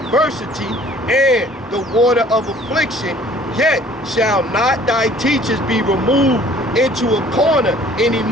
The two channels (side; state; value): both; normal; correlation 0.53